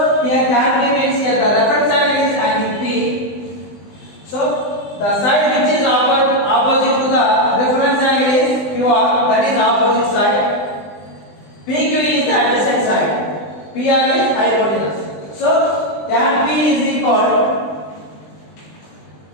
here tan P means here the reference angle is angle P. So the side which is opposite to the reference angle is QR, that is opposite side. PQ is the adjacent side. PR is hypotenuse. So tan P is equal,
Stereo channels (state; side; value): late; right; 20 ms